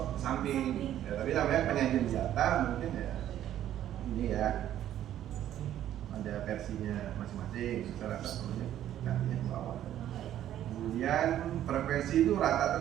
samping ya, tapi namanya penyajian data mungkin ya ini ya ada versinya masing-masing. Saya rasa perlunya gantinya ke bawah. Kemudian frekuensi itu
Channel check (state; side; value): quieter; left; 11.7 dB